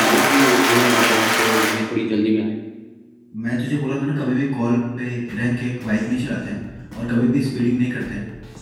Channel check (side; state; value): both; identical; correlation 1.00